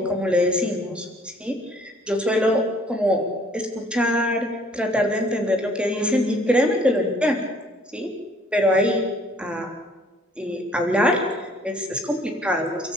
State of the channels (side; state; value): both; normal; correlation 0.59